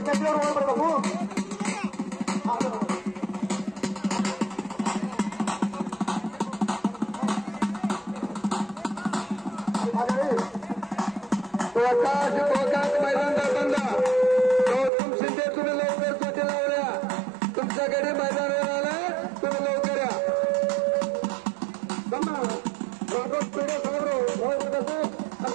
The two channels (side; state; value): left; drops out; at 14.9 s